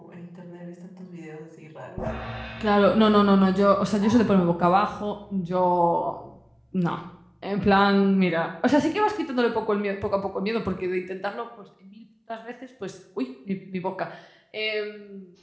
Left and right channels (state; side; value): identical; both; correlation 1.00